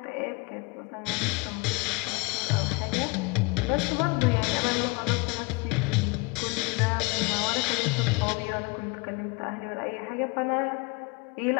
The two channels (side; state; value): right; quieter; 27.1 dB